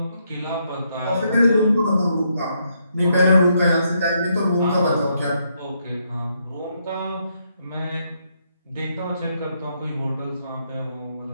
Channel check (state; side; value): inverted; both; correlation -0.76